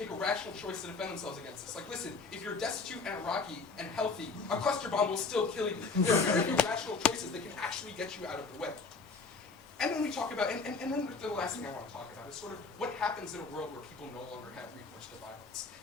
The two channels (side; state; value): right; quieter; 4.3 dB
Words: a rational choice to defend themselves against this. Like, listen, if you're destitute and Iraqi and healthy, a cluster bomb will still kill you. There are very few rational choices that can actually get you out of the way. And then we talk about, and then the last thing I want to talk about is sort of what happens in a world where people no longer have recourse to violence.